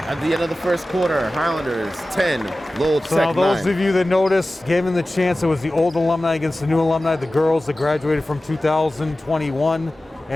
At the end of the first quarter, Highlanders 10, Lowell So now Tech those 9. of you that noticed, given the chance, it was the old alumni against the new alumni, the girls that graduated from 2021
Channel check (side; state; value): both; normal; correlation 0.96